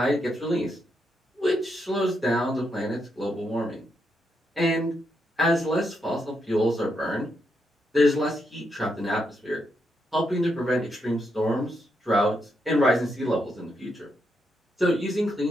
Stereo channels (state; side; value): normal; both; correlation 0.81